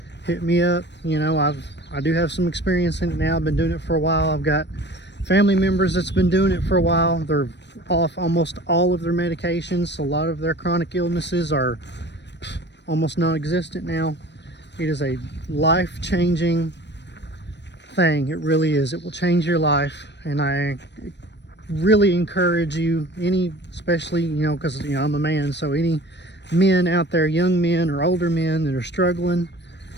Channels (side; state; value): right; late; 0.51 ms